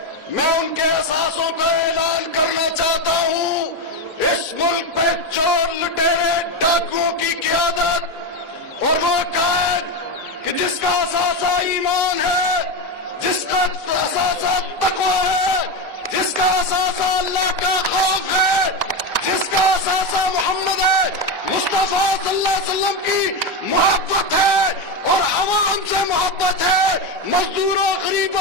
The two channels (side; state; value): both; normal; correlation 0.13